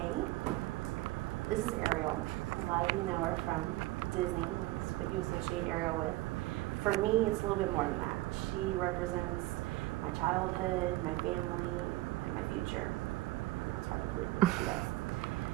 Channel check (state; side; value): quieter; left; 18.4 dB